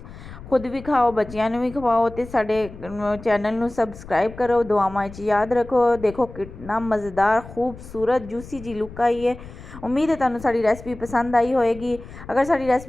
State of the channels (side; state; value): left; noise; rumble, 16 dB below the sound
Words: खुद भी खाओ, बच्चियां नू भी खवाओ ते साडे चैनल नू सबसक्राइब करो। दुआवां च याद रखो। देखो कितना मज़ेदार खूबसूरत जूसी जी लुक आई है। उम्मीद है तुहानू साडी रेसिपी पसंद आई होएगी। अगर साडी